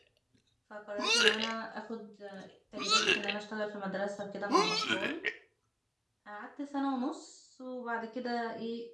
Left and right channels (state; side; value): identical; both; correlation 1.00